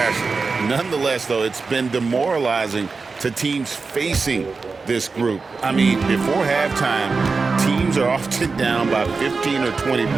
Nonetheless, though, it's been demoralizing to teams facing this group. I mean, before halftime, teams are often down by 15 or 20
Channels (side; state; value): left; quieter; 4.4 dB